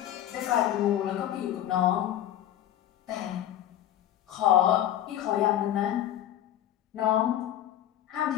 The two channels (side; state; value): right; quieter; 11.8 dB